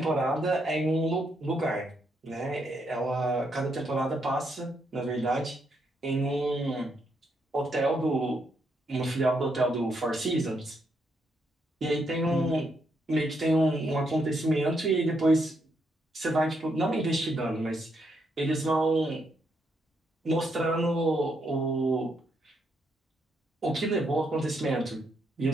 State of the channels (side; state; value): both; normal; correlation 0.77